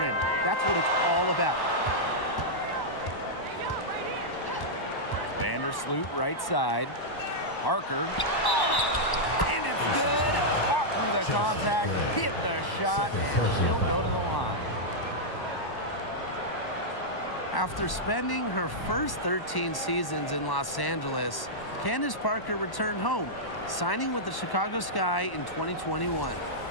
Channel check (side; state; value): right; late; 1.1 ms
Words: That's what it's all about. Vandersloot right side. Parker. And it's good. Fought through the contact, hit the shot, and she'll go to the line. After spending her first 13 seasons in Los Angeles, Candace Parker returned home, signing with the Chicago Sky in 2021.